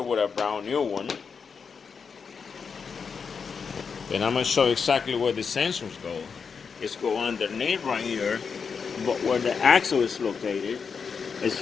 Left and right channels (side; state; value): right; quieter; 5.8 dB